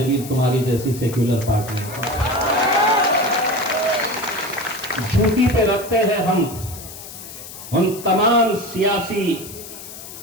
तुम्हारी जैसी सेक्युलर पार्टी, जूती पे रखते हैं हम उन तमाम सियासी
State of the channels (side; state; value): left; noise; hiss, 13 dB below the sound